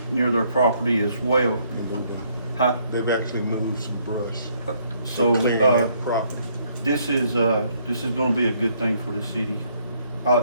near their property as well. Huh? They've actually moved some brush. So, Clearing their property. this is gonna be a good thing for the city.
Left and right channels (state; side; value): inverted; both; correlation -0.68